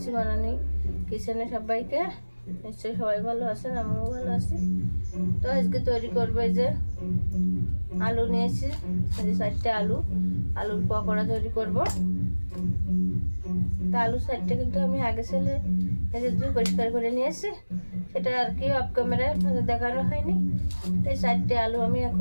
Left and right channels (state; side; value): inverted; both; correlation -1.00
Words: বানানি কিচেনে সবাইকে। নিশ্চয়ই সবাই ভালো আছেন, আমিও ভালো আছি। তো আজকে তৈরি করবো এই যে আলু নিয়েছি, 4টে আলুর পকোড়া তৈরি করব। তা আলু 4টে কিন্তু আমি আগে ছেলে পরিষ্কার করে নিয়েছি, সেটা আর কি অফ ক্যামেরায় দেখানো হয়নি। এই 4টে আলু আমি